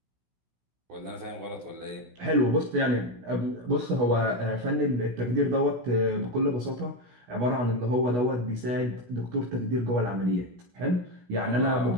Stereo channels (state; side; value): late; left; 16 ms